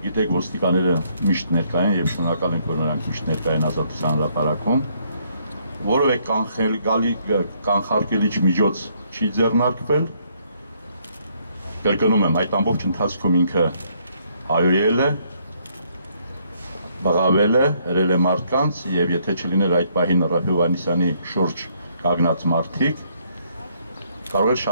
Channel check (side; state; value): both; inverted; correlation -0.69